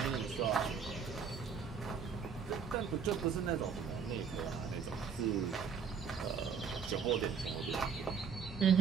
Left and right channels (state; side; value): quieter; left; 6.4 dB